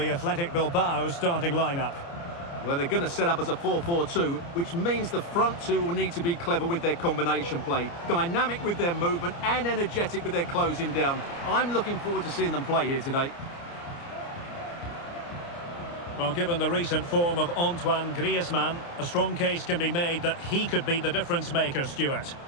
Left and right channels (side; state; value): right; late; 29 ms